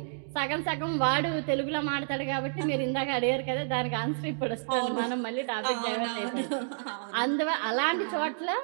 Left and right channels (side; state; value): left; silent; digital silence